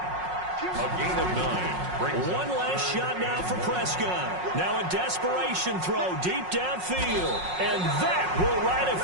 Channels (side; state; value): left; late; 5.5 ms